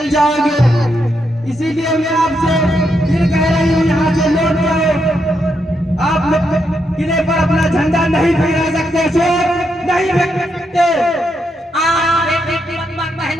जाओगे, इसीलिए मैं आपसे फिर कह रही हूँ यहाँ से लौट जाओ। आप लोग किले पर अपना झंडा नहीं फहरा सकते अशोक, नहीं फहरा सकते। बेटी पद्मा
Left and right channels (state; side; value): normal; both; correlation 0.81